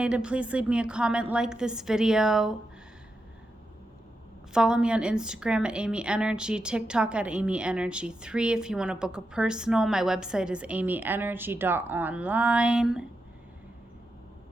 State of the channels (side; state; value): both; normal; correlation 0.87